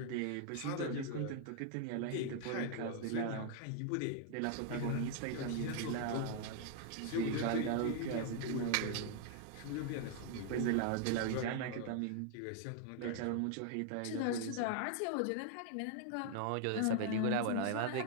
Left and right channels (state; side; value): different; both; correlation 0.00